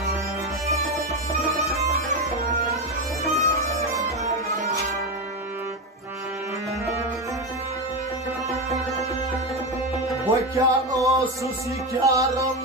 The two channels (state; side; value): normal; both; correlation 0.14